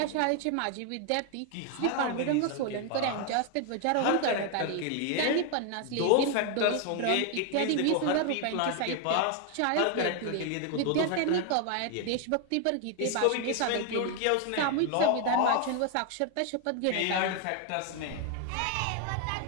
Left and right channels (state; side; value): different; both; correlation 0.00